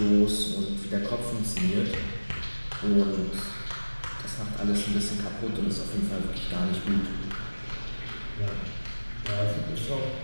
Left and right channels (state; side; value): inverted; both; correlation -1.00